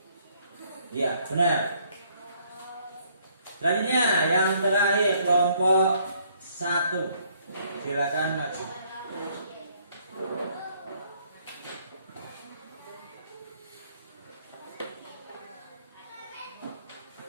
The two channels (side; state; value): both; inverted; correlation -0.65